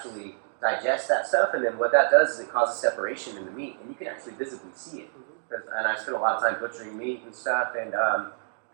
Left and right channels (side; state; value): left; silent; digital silence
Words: digest that stuff, and then what that does is it causes separation in the meat, and you can actually visibly see it. Mm-hmm. And I spend a lot of time butchering meat and stuff, and